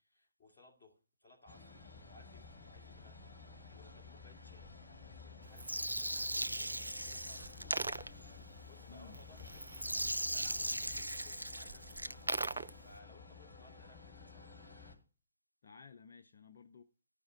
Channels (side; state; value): both; inverted; correlation -0.89